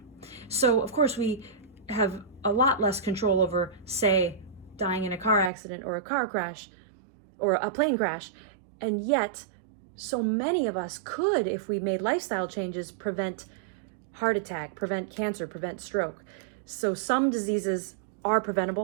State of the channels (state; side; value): drops out; left; at 5.5 s